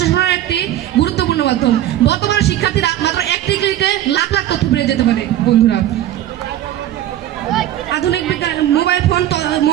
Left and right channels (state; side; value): quieter; left; 12.8 dB